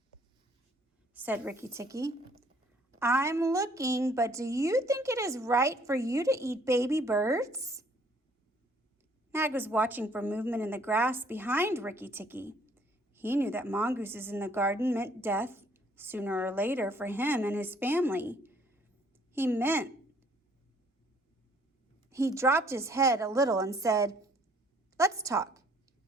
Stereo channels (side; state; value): both; normal; correlation 0.61